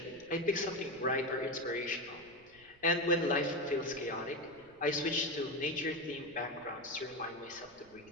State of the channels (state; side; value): noise; right; rumble, 27 dB below the sound